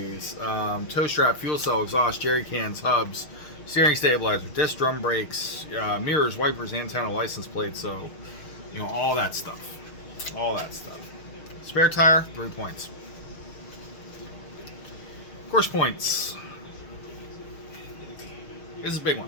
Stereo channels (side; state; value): right; late; 6.5 ms